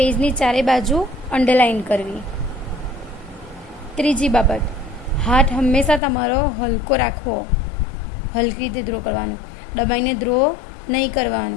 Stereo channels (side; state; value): right; drops out; at 6.0 s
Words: ચારે બાજુ અંડરલાઇન કરવી. ત્રીજી બાબત, હાથ હંમેશા તમારો હલકો રાખવો, હલકી રીતે ડ્રો કરવાનું, દબાઈને ડ્રો નહીં